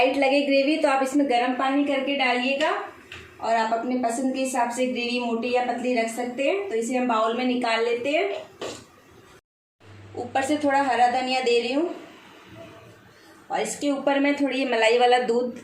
लगे ग्रेवी तो आप इसमें गर्म पानी करके डालिएगा और आप अपने पसंद के हिसाब से ग्रेवी मोटी या पतली रख सकते हैं। तो इसे हम बाउल में निकाल लेते हैं। ऊपर से थोड़ा हरा धनिया दे रही हूँ और इसके ऊपर मैं थोड़ी मलाई वाला दूध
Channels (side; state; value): both; identical; correlation 1.00